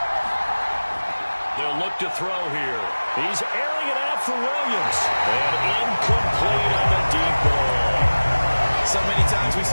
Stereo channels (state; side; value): inverted; both; correlation -1.00